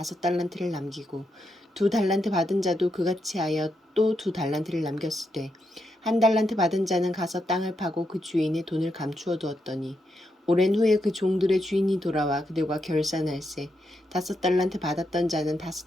남기고 2달란트 받은 자도 그같이 하여 또 2달란트를 남겼을 때 1달란트 받은 자는 가서 땅을 파고 그 주인의 돈을 감추어 두었더니 오랜 후에 그 종들의 주인이 돌아와 그들과 결산할세 5달란트 받았던 자는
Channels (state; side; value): normal; both; correlation 0.82